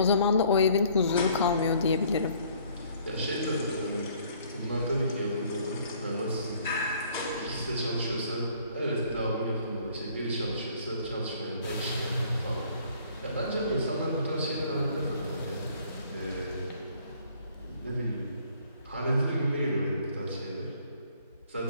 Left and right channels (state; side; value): inverted; both; correlation -0.59